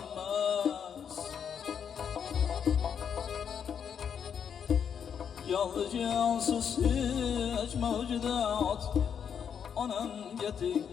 Jonli jonsiz hech mavjudot onamga teng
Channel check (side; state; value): right; quieter; 7.7 dB